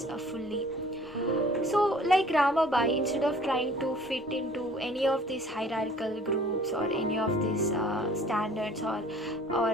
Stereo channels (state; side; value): normal; both; correlation 0.52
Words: fully. So, like Ramabai, instead of trying to fit into any of these hierarchical groups or any of these standards, or